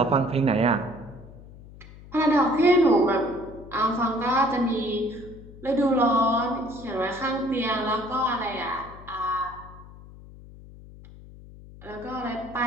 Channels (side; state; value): left; noise; hum, 19 dB below the sound